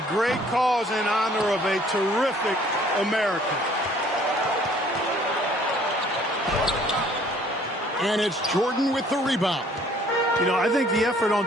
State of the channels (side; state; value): both; normal; correlation 0.58